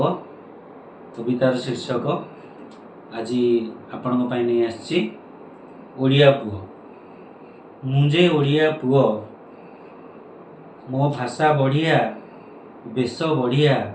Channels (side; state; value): both; identical; correlation 1.00